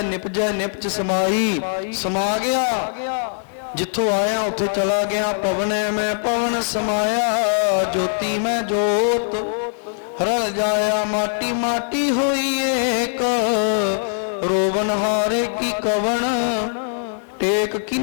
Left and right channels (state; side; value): silent; right; digital silence